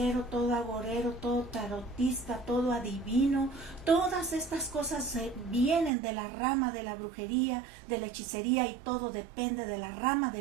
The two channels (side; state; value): left; drops out; at 5.9 s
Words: todo agorero, todo tarotista, todo adivino, todas estas cosas vienen de la rama de la brujería, de la hechicería, y todo depende de la rama